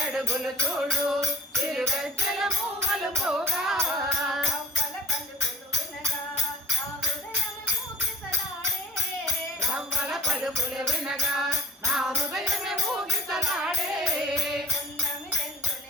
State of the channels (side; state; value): both; normal; correlation 0.52